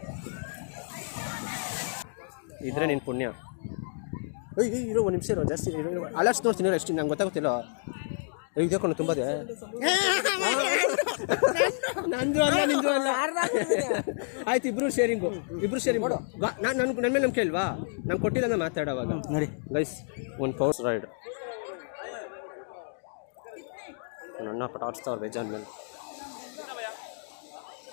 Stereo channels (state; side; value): silent; right; digital silence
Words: ಇದ್ರೆ ನಿನ್ನ ಪುಣ್ಯ. ಇರೋ ಒಂದು ನಿಮಿಷ ಇರೋ ಜಾಸ್ತಿ ಅಲರ್ಟ್ಸ್ ನೋಡ್ತೀನಿ ಎಷ್ಟು ನಂಗೆ ಗೊತ್ತಾಗುತ್ತಿಲ್ಲ. ಇದಕ್ಕೊಂಡು ತುಂಬದೆ ನಂದು ಅಲ್ಲ ನಿಂದು ಅಲ್ಲ ಆಯ್ತು ಇಬ್ರು ಶೇರಿಂಗ್ ಮಾಡು. ನನ್ನ ಮೇಲೆ ನಂಬಿಕೆ ಇಲ್ವಾ? ನಂಗೆ ಕೊಟ್ಟಿಲ್ಲ ನಾನು ಮಾತಾಡೋವಾಗ ನೋಡಿ ಗೈಸ್ ಒಂದು ಪವರ್ ರೈಡ್ ನನ್ನ ಪಟಾಡ್ಸ್ತಾವ್ರು ಬೇಜಾನ್ ಮೇಲೆ.